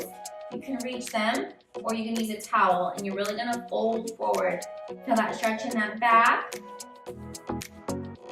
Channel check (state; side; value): identical; both; correlation 1.00